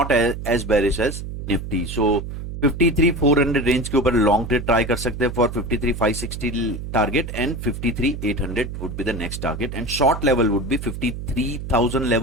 as bearish as Nifty. So 53400 range के ऊपर लॉन्ग ट्रेड ट्राई कर सकते हैं for 53560 target, and 53800 would be the next target, and short level would be 53000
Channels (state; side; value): noise; right; hum, 8 dB below the sound